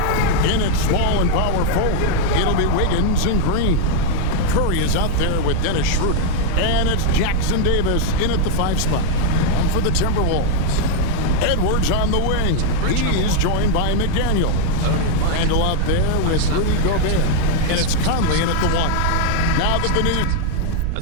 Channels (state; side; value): different; both; correlation 0.00